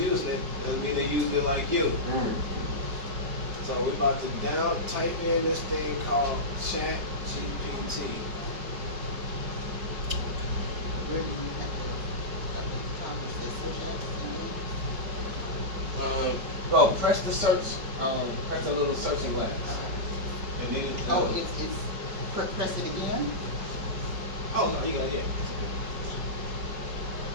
it, doesn't mean they're using it like you. So we're about to down type in this thing called Chat GPT. Where do you have to, at the top it says social apps, Well, press the search, press the little searching glass. And then oh, it's, press it again? oh no, you got it.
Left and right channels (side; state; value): left; late; 5.1 ms